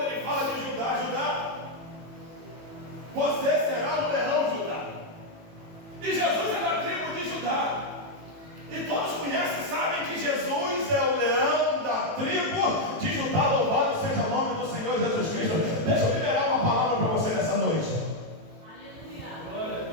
ele fala de Judá, você será um leão, Judá. E Jesus é da tribo de Judá. E todos conhecem e sabem que Jesus é o leão da tribo de Judá. Louvado seja o nome do Senhor Jesus Cristo. Deixa eu liberar uma palavra para você nessa noite. Aleluia. Glória a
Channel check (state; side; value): late; left; 18 ms